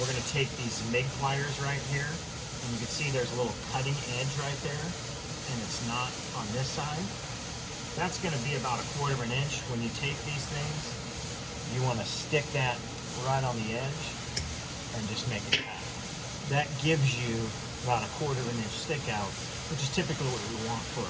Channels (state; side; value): identical; both; correlation 1.00